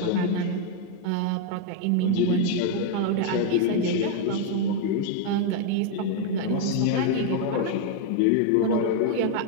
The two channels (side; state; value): both; different; correlation 0.01